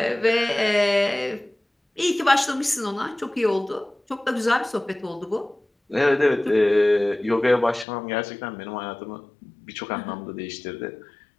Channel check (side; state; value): right; drops out; at 7.9 s